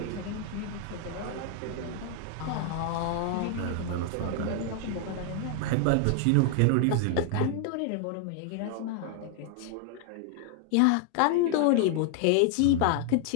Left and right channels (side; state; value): both; different; correlation 0.00